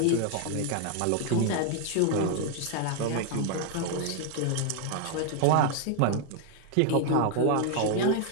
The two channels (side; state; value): both; different; correlation 0.00